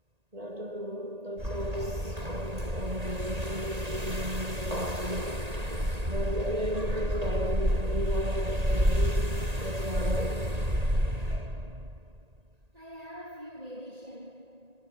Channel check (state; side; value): late; left; 1.8 ms